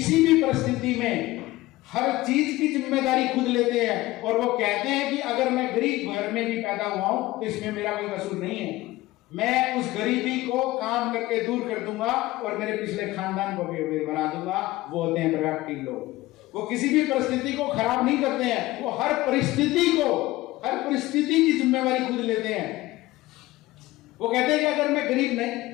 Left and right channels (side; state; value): right; quieter; 18.2 dB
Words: भी परिस्थिति में हर चीज की जिम्मेदारी खुद लेते हैं और वो कहते हैं कि अगर मैं गरीब घर में भी पैदा हुआ हूं तो इसमें मेरा कोई कसूर नहीं है, मैं उस गरीबी को काम करके दूर कर दूंगा और मेरे पिछले खानदान को भी बना दूंगा। वो होते हैं प्रोएक्टिव लोग। वो किसी भी परिस्थिति को खराब नहीं करते हैं, वो हर परिस्थिति की जिम्मेवारी खुद लेते हैं। वो कहते हैं कि अगर मैं गरीब नहीं